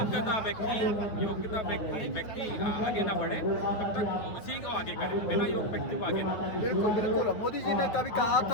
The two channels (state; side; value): late; right; 9.4 ms